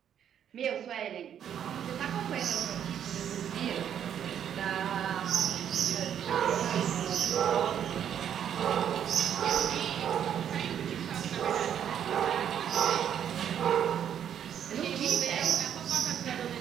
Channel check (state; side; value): quieter; left; 9.3 dB